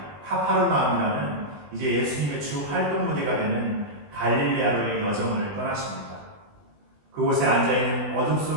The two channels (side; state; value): left; late; 20 ms